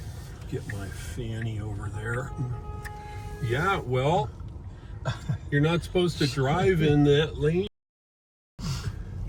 get my fanny over there. Yeah, well, you're not supposed to drive in that lane.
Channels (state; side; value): identical; both; correlation 1.00